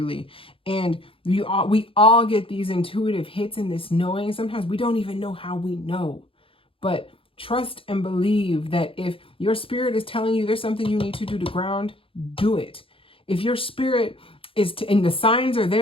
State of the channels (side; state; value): right; late; 0.26 ms